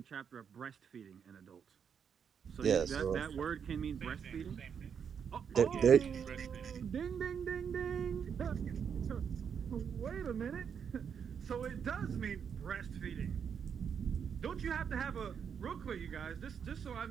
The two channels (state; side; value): quieter; left; 7.2 dB